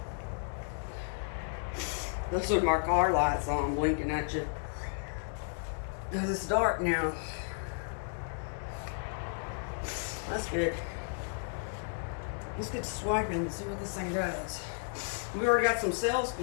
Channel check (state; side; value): silent; right; digital silence